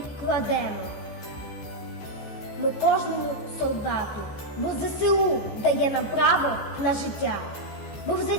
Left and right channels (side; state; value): right; late; 14 ms